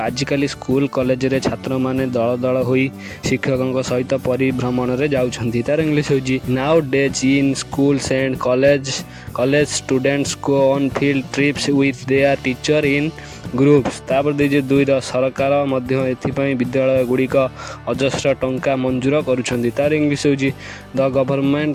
स्कूल कॉलेज रे छात्र मैंने दल दल हो शिक्षकों सहित परिभ्रमण में जाऊँगी। तार इंग्लीश हूँ now days in schools and college students go on field trips with their teacher in groups. तापर दीजिए 2 सरकार विद्यालय गुड़िक अजस्र टंका मंजूर करुछंदी। तार इंग्लीश हूँ the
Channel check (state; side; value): identical; both; correlation 1.00